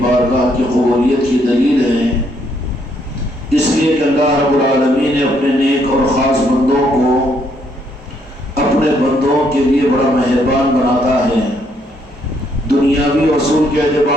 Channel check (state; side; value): normal; both; correlation 0.71